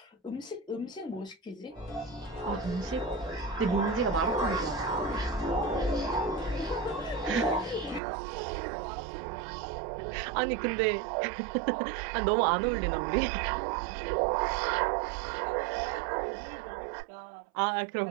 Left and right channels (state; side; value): drops out; left; at 8.0 s